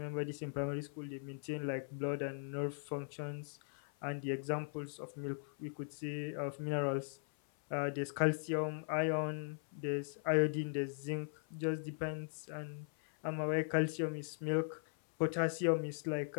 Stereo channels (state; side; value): silent; right; 51 dB below the other